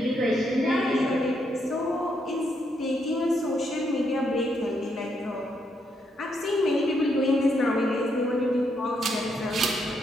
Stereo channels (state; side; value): normal; both; correlation 0.77